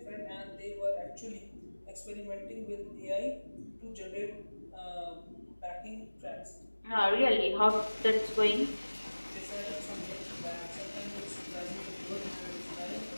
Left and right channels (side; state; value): both; inverted; correlation -1.00